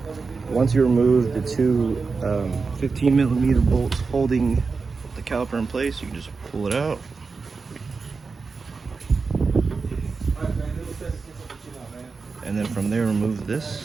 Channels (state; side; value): quieter; left; 4.6 dB